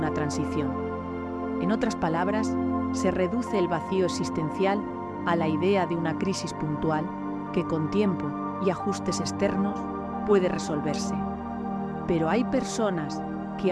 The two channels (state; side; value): identical; both; correlation 1.00